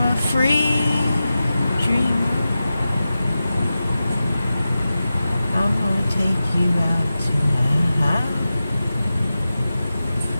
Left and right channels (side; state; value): both; inverted; correlation -0.93